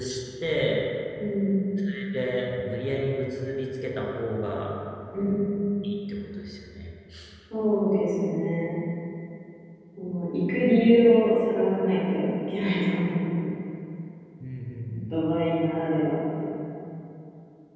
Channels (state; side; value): identical; both; correlation 1.00